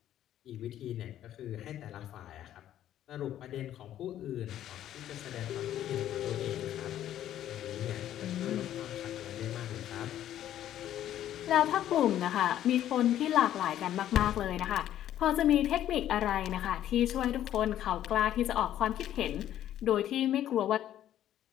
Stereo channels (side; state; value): right; quieter; 11.8 dB